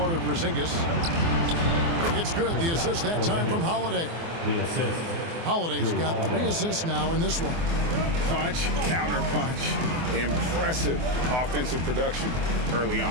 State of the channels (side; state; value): left; late; 24 ms